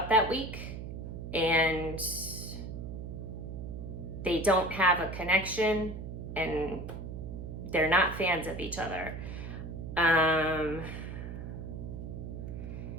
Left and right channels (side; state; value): right; noise; hum, 8 dB below the sound